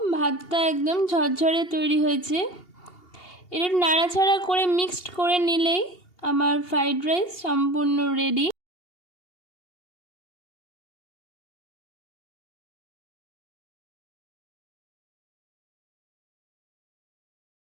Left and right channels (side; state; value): right; late; 2.8 ms